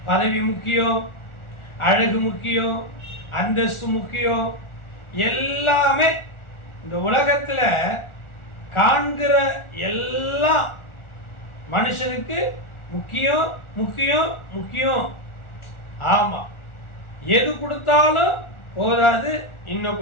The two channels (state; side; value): late; right; 1.4 ms